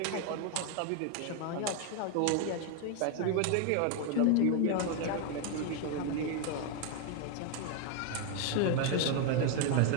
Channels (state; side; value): different; both; correlation 0.01